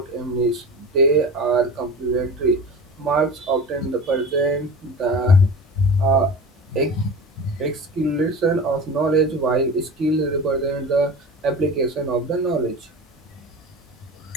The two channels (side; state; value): both; normal; correlation 0.33